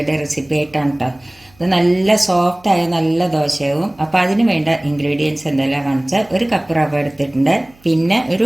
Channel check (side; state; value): right; noise; hum, 29 dB below the sound